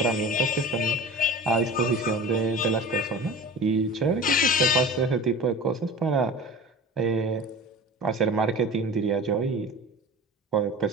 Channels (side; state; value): both; normal; correlation 0.36